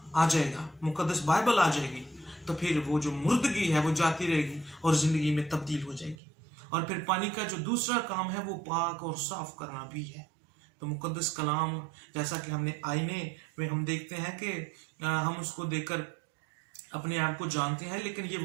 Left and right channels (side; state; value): left; drops out; at 6.2 s